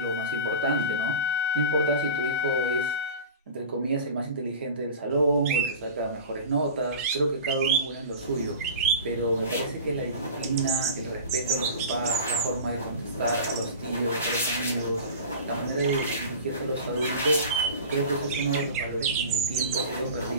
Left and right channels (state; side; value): inverted; both; correlation -0.34